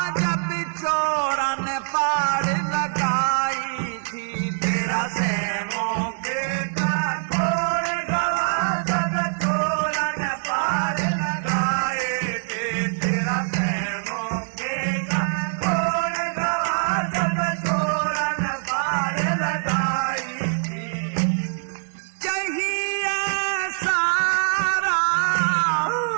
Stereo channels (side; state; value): left; silent; 63 dB below the other